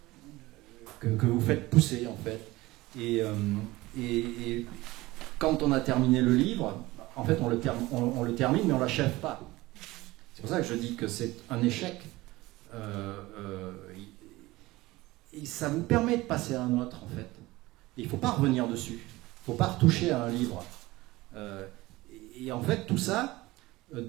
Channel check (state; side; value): quieter; left; 19.5 dB